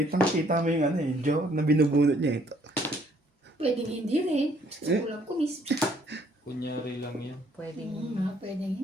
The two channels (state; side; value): normal; both; correlation 0.64